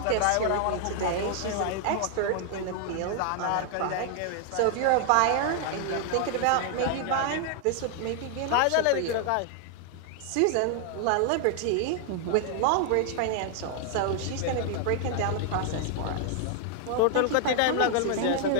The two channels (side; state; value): both; different; correlation 0.00